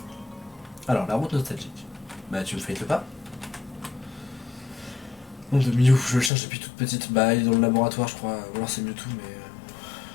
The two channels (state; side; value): drops out; right; at 6.3 s